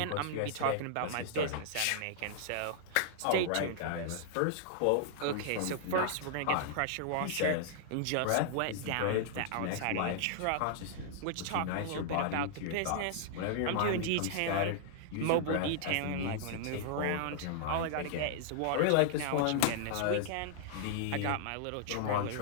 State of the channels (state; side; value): different; both; correlation -0.01